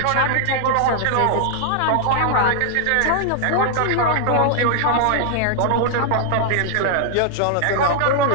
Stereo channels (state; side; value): different; both; correlation 0.00